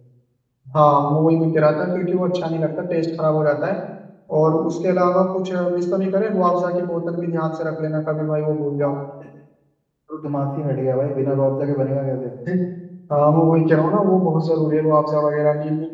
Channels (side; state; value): both; identical; correlation 1.00